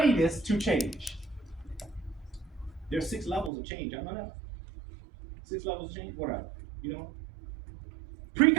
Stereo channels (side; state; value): left; drops out; at 3.5 s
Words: to change. There's 6 levels of change. I know that. 6 levels of change. What are you know?